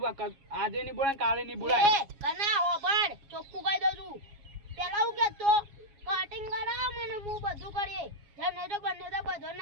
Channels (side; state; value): left; late; 7.3 ms